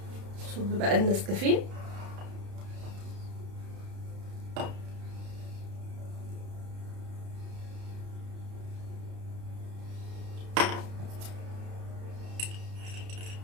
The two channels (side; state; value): left; late; 31 ms